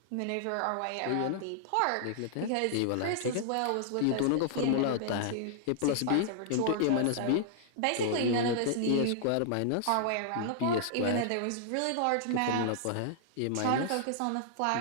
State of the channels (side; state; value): both; different; correlation -0.01